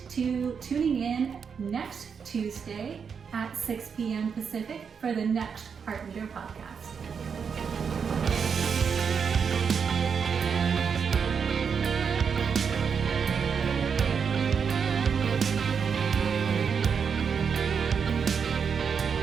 to tuning in next Tuesday at 6 p.m. Pacific for the next Heart Leader podcast.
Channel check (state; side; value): quieter; left; 6.4 dB